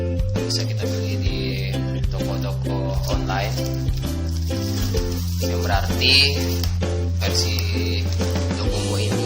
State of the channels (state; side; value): identical; both; correlation 1.00